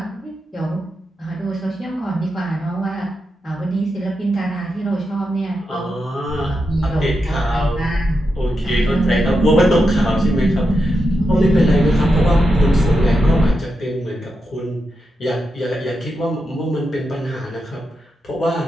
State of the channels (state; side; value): normal; both; correlation 0.87